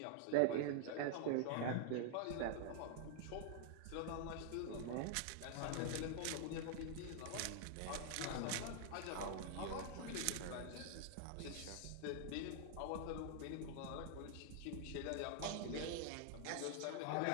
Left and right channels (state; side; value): different; both; correlation 0.00